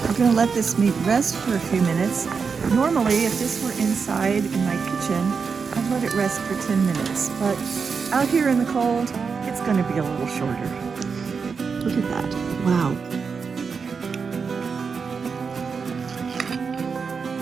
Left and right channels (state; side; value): quieter; left; 5.5 dB